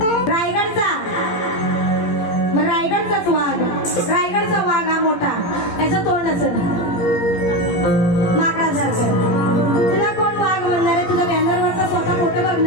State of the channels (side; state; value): right; late; 17 ms